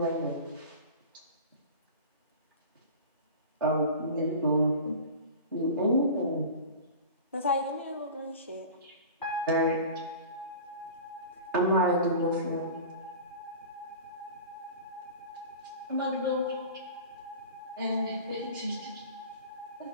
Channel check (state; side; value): inverted; both; correlation -0.36